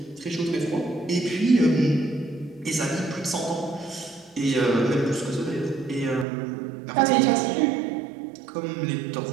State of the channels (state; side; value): drops out; left; at 6.2 s